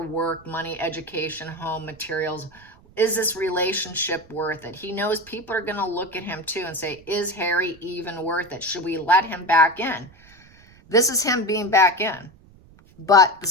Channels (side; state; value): right; noise; rumble, 26 dB below the sound